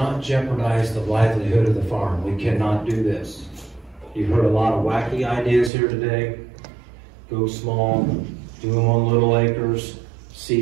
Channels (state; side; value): drops out; left; at 5.7 s